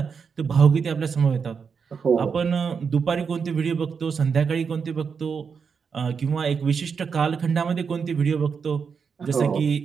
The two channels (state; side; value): quieter; left; 6.0 dB